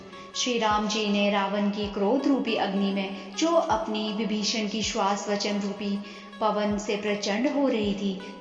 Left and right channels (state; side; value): identical; both; correlation 1.00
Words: श्री राम जी ने रावण की क्रोध रूपी अग्नि में, जो अपनी विभीषण की श्वास वचन रूपी पवन से प्रचंड हो रही थी,